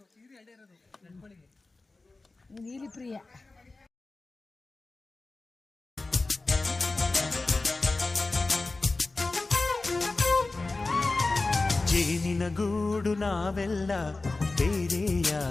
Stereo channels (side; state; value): right; quieter; 3.4 dB